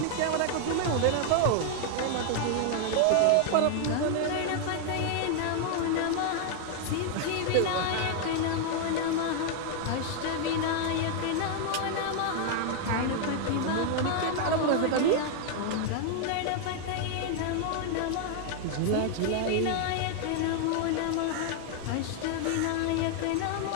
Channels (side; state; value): both; different; correlation 0.00